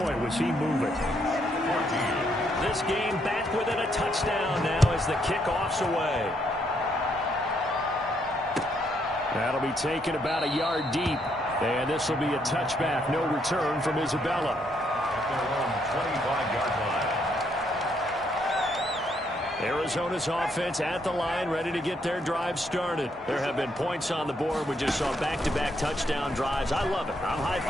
was he moving. This game back within a touchdown now as the kickoff's away. That'll be taken about a yard deep. And this will be a touchback. No return from Isabella. At their own 25-yard line. Arizona's offense at the line, ready to get their drive started. There have been points on the board. We just saw back-to-back touchdown drives. I love it. I'm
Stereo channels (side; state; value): both; normal; correlation 0.74